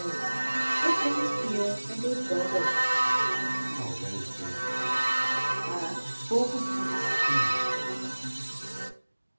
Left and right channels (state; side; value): inverted; both; correlation -1.00